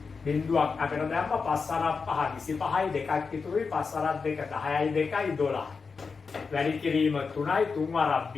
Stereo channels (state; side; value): quieter; right; 5.0 dB